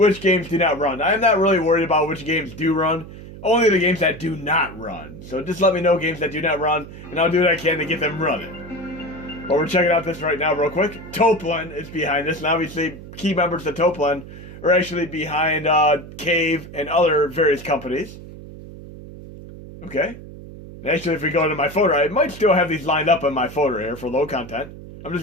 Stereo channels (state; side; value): noise; right; hum, 15 dB below the sound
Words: games do not run. I'm not really worried about which games do run, only the games that do not run. So just let me know games that do not run, and I'll do what I can to get them running. But we're checking out this right now real quick. Toplin is behind this, and obviously key members of Toplin are actually behind Cave and other various companies. Okay. Actually, if we go into my folder, I might still have these lined up in my folder here for low content. I'm